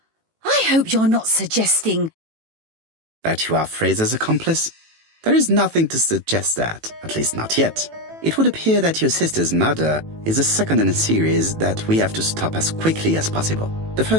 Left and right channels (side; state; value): left; late; 18 ms